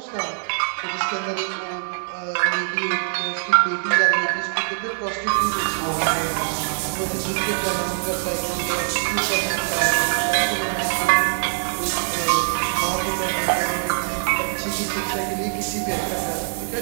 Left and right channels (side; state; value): left; silent; 60 dB below the other